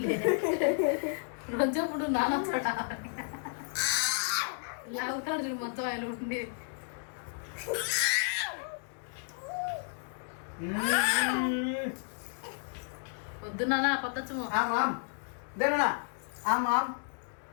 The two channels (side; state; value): right; silent; 56 dB below the other